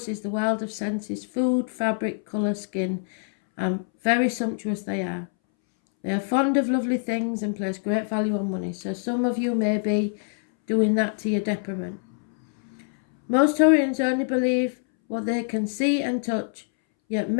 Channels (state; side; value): silent; right; 62 dB below the other